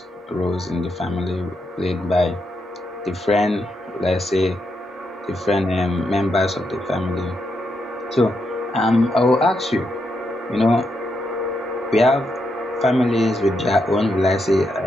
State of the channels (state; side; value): normal; both; correlation 0.82